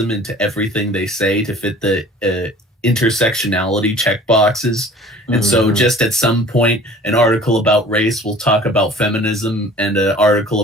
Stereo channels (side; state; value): both; normal; correlation 0.47